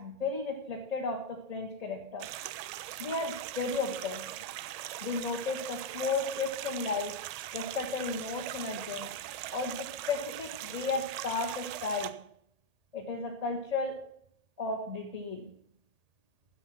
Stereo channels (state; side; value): late; left; 1.8 ms